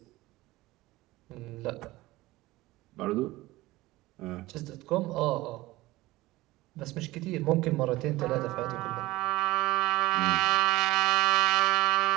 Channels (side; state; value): left; quieter; 18.8 dB